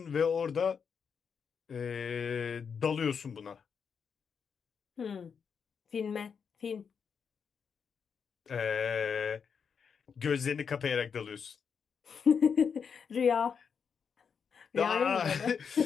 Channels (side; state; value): right; quieter; 6.5 dB